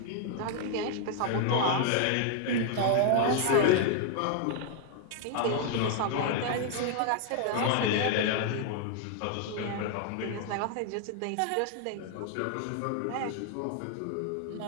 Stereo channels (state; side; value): different; both; correlation 0.00